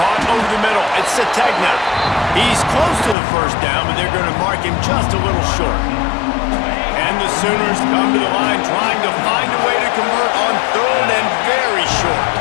over the middle. It's Sategna. He's close to the first down, but they're going to mark him just a little short. And the Sooners come to the line trying to find a way to convert on 3rd and very short.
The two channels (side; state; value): right; drops out; at 3.2 s